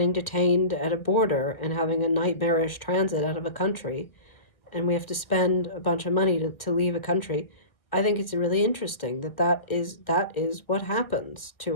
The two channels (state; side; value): late; right; 1.5 ms